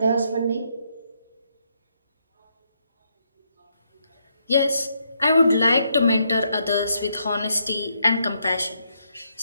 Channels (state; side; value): inverted; both; correlation -0.77